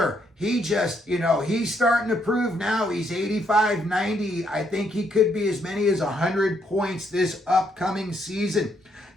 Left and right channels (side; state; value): both; normal; correlation 0.73